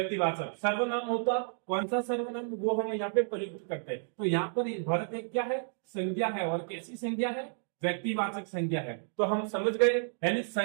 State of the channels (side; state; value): left; silent; digital silence